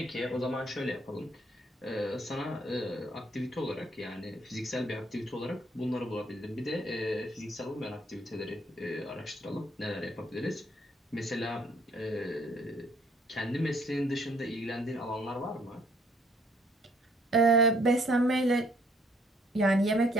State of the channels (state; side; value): normal; both; correlation 0.64